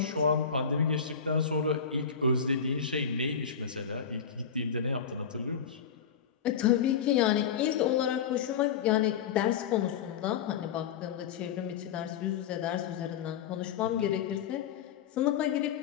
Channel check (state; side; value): quieter; right; 7.2 dB